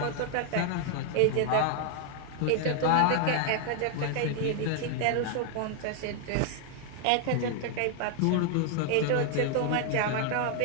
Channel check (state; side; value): different; both; correlation 0.00